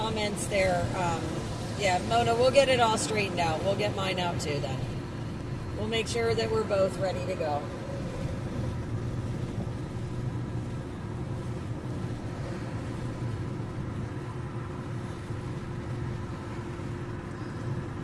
there, yeah, Mona, we'll get it all straightened out. We'll get mine out too then. We'll make sure that we're both ready to go.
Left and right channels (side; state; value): both; identical; correlation 1.00